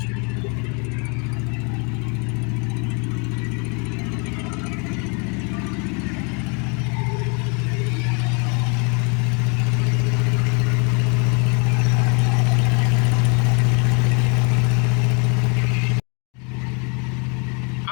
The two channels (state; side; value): quieter; right; 34.3 dB